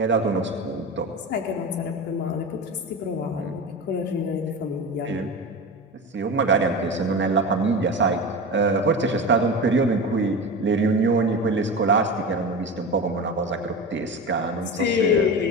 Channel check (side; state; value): both; normal; correlation 0.27